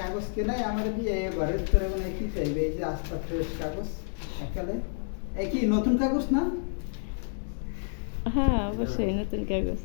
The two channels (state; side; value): silent; right; digital silence